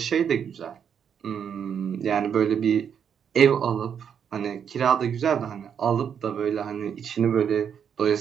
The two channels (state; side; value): quieter; left; 7.9 dB